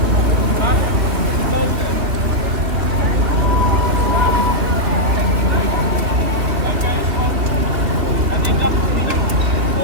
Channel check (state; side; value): late; left; 3.4 ms